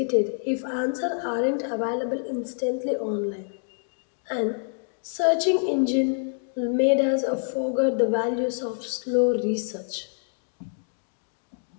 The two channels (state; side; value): silent; right; digital silence